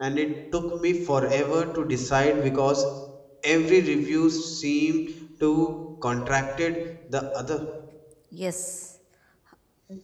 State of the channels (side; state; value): both; identical; correlation 1.00